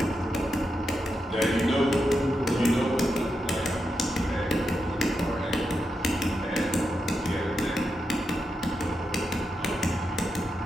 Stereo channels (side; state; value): both; normal; correlation 0.86